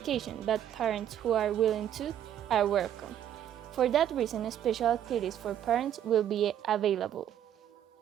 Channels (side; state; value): left; quieter; 10.4 dB